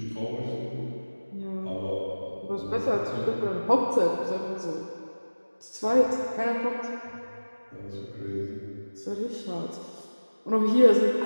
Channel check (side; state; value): both; inverted; correlation -1.00